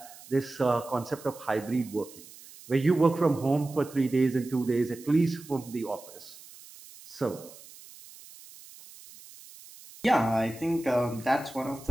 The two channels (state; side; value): noise; right; hiss, 19 dB below the sound